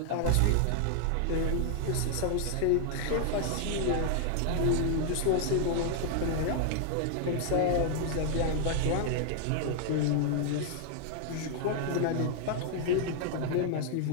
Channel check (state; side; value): different; both; correlation 0.00